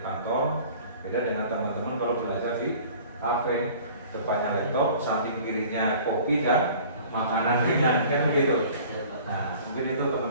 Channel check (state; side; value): inverted; both; correlation -0.47